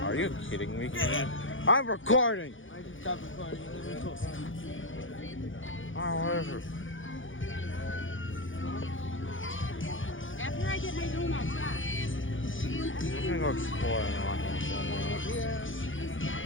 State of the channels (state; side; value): late; right; 0.57 ms